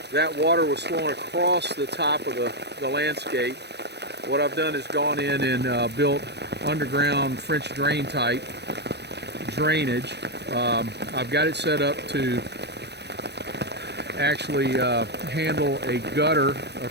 that water was flowing across the top of the landscape. What I've done is gone in and built underground French drain type drainage. I've got it set up to actually handle a gutter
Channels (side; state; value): left; late; 0.49 ms